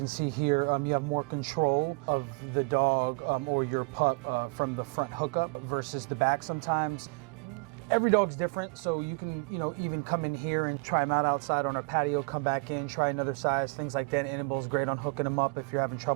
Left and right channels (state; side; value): quieter; left; 32.5 dB